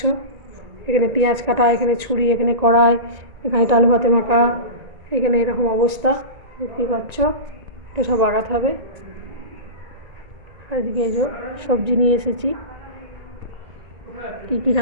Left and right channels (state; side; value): late; left; 1.9 ms